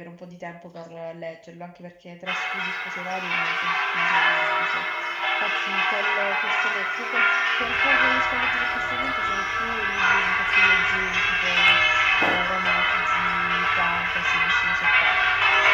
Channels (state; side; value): identical; both; correlation 1.00